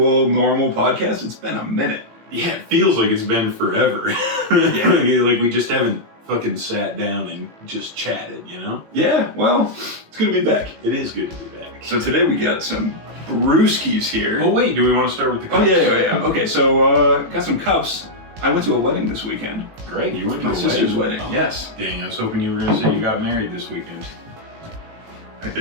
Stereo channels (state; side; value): late; left; 18 ms